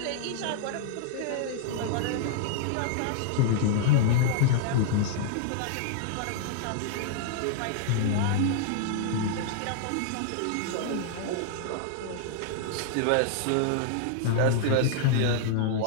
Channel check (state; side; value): different; both; correlation -0.01